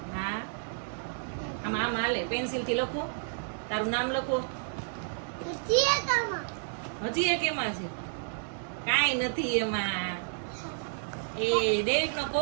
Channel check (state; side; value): silent; left; 57 dB below the other